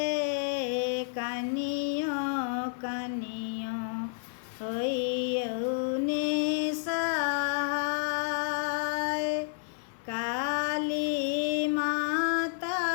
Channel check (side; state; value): right; silent; 57 dB below the other